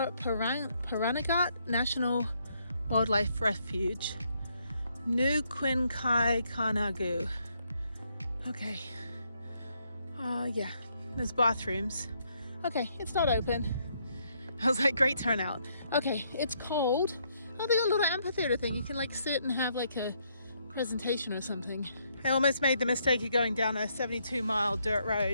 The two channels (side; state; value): both; inverted; correlation -0.73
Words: Pahranagat National Wildlife Refuge, New Quinkai Kanagu. Okay, yeah, there's bathrooms. Okay, it's not open. I was like, great turnout. Okay, it's cold. Oh, they got a little amphitheater thing. You can like sit and have like a presentation or something. I almost made the mistake of going down a 72-mile dirt